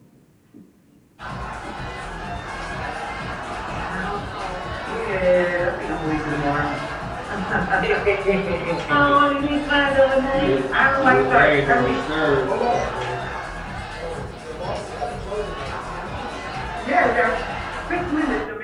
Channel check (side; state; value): both; identical; correlation 1.00